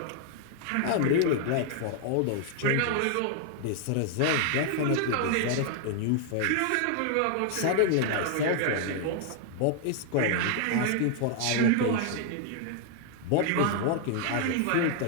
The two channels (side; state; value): both; different; correlation 0.00